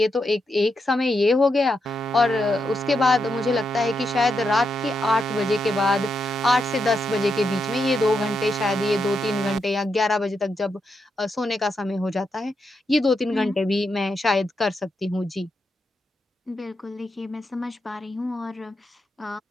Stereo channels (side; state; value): both; normal; correlation 0.83